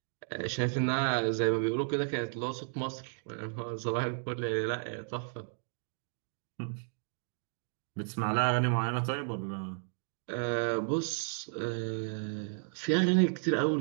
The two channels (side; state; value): left; silent; digital silence